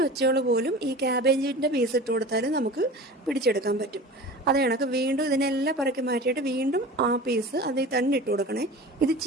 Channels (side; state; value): both; normal; correlation 0.36